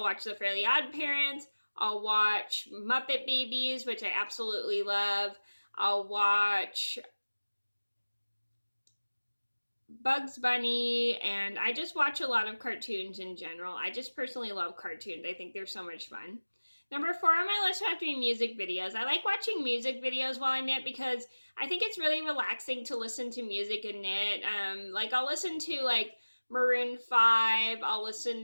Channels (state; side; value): inverted; both; correlation -1.00